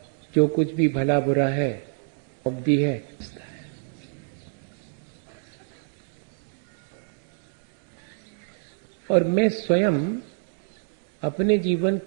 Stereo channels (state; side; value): silent; left; digital silence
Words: जो कुछ भी भला बुरा है उपदी है, और मैं स्वयं अपने जीवन